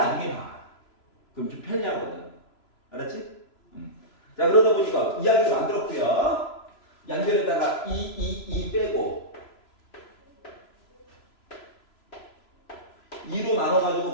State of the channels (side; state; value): right; late; 3.0 ms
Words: 봐. 그럼 좀 편리하거든. 알았지? 자 그러다 보니까 이야기를 만들었고요. 양변에다가 2 빼고 2로